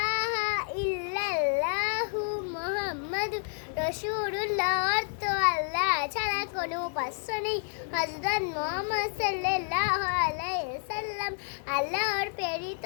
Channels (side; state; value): right; silent; 58 dB below the other